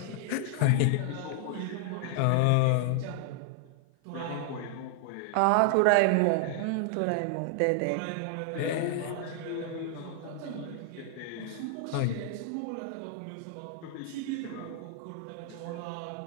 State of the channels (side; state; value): both; different; correlation 0.00